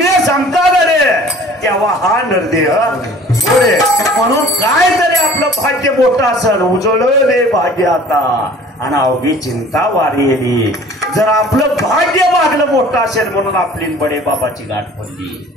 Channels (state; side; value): normal; both; correlation 0.48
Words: सांगतात रे तेव्हा हा नरदेह पुढे. म्हणून काय तरी आपलं भाग्य मोठं असेल, उजळले भाग्य आता आणि अवघी चिंता वारी. जर आपलं भाग्य मागलं मोठं असेल म्हणून आपली बडे बाबाची गाठ पडली.